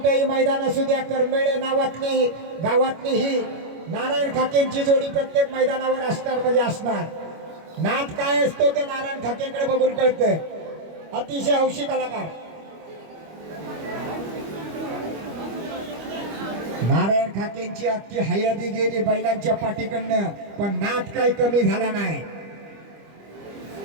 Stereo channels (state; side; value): late; left; 25 ms